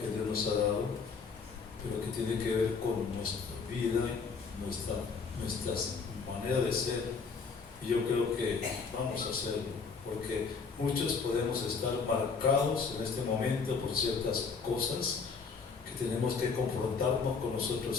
Dios nos ha dado, pero que tiene que ver con nuestra vida, nuestra manera de ser, y yo creo que vamos a hacerlo, porque muchos podemos estar marcados en este momento por ciertas cosas que tenemos que confrontarnos con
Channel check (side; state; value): right; quieter; 5.2 dB